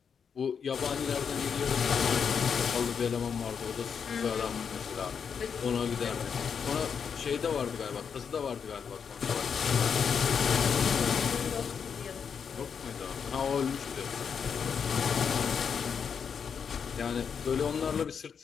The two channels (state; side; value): quieter; right; 6.8 dB